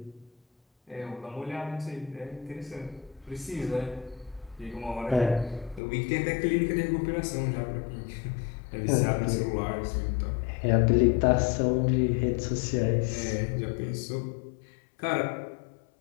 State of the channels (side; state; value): right; drops out; at 5.8 s